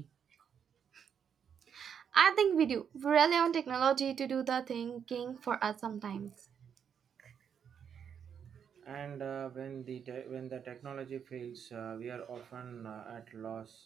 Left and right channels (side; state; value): left; quieter; 7.7 dB